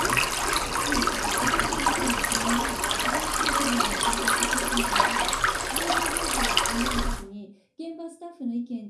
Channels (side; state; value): both; identical; correlation 1.00